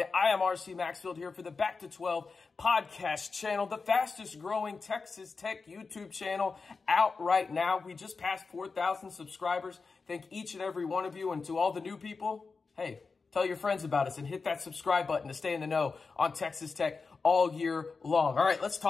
I am RC Maxfield here for the Back to 12 podcast channel, the fastest growing Texas Tech YouTube channel out right now. We just passed 4,000 subscribers. Thank each and every one of you, and to all the new people, hey, tell your friends about us and hit that subscribe button to stay in the know on Texas Tech all year long. All right, let's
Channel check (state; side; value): quieter; right; 4.5 dB